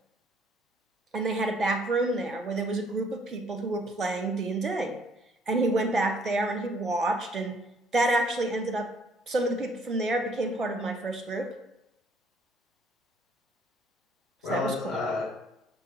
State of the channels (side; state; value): both; normal; correlation 0.63